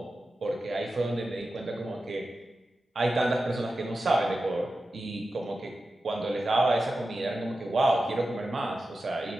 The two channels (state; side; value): normal; both; correlation 0.92